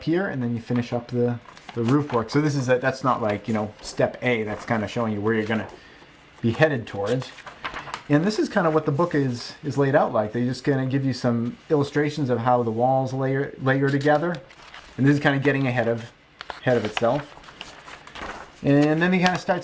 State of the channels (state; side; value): identical; both; correlation 1.00